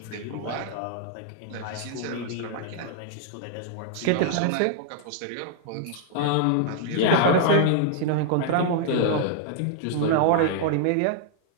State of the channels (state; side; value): different; both; correlation 0.00